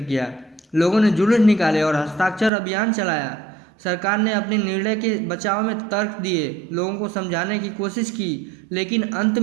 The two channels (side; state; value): left; drops out; at 2.5 s